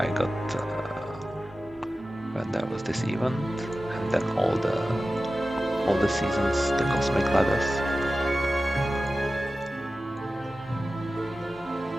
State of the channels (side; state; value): both; normal; correlation 0.95